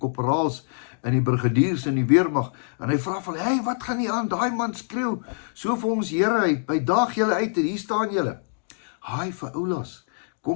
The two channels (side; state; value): right; silent; digital silence